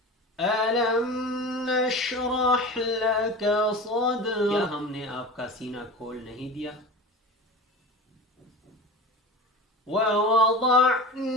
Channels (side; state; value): both; normal; correlation 0.33